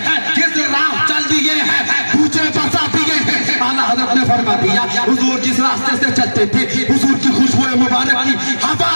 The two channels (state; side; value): inverted; both; correlation -1.00